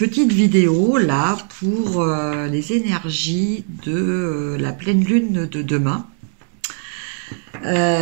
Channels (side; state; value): left; silent; digital silence